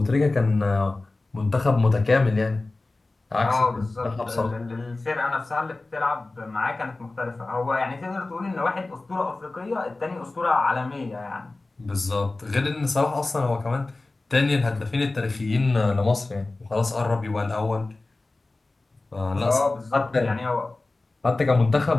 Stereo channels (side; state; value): right; quieter; 3.2 dB